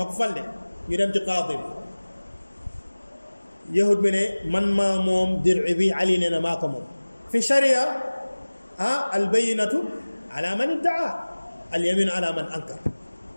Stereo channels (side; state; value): both; inverted; correlation -1.00